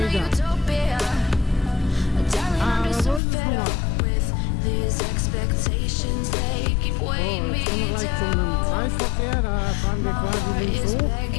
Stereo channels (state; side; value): drops out; right; at 3.2 s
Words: Aber so ist es nun mal. So, jetzt kommen wir gleich zu einem Kreisverkehr. Da fahren wir quasi links hoch.